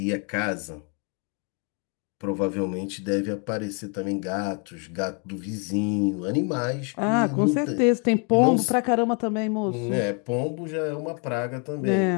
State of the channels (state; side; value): quieter; right; 37.4 dB